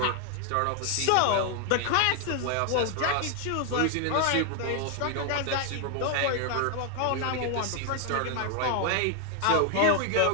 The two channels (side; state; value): both; different; correlation 0.00